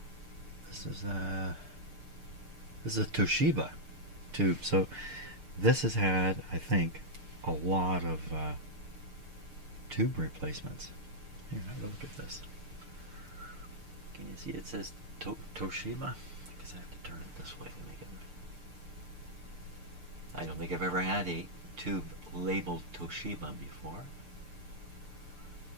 This is a Toshiba tube. So this has had, I think, a lot of tube replacements. Here, have a look at this. Can you see it says Toshiba? I guess I have to turn it this way to make it. I don't think I've ever had a tube labeled Toshiba before.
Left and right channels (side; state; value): left; late; 6.7 ms